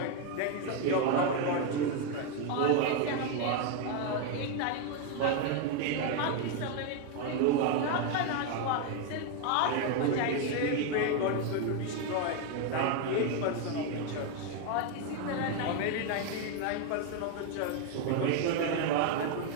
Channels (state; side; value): different; both; correlation 0.01